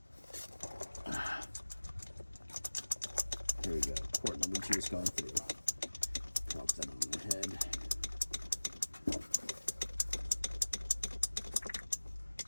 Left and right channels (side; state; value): both; inverted; correlation -1.00